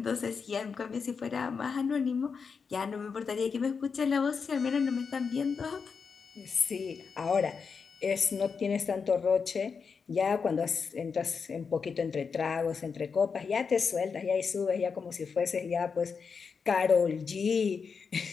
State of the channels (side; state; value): right; quieter; 5.6 dB